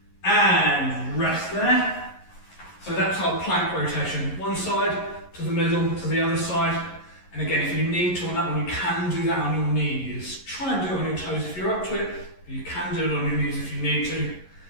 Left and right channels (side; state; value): right; late; 11 ms